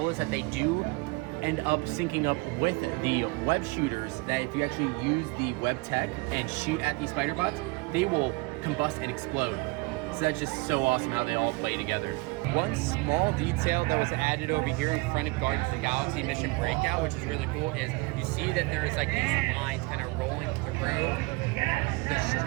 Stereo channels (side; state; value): left; quieter; 25.9 dB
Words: us that they do end up syncing up with the web shooters, that if you actually use the web tech and shoot at these Spider Bots, they will combust and explode. So that's just so awesome how they all play together. One small detail that was added over here in front of Guardians of the Galaxy Mission Breakout, which is really cool, is you see that there's like these lines kind of rolling through the